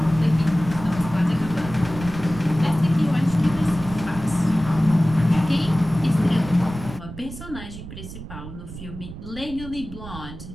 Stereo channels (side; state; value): right; noise; rumble, 12 dB below the sound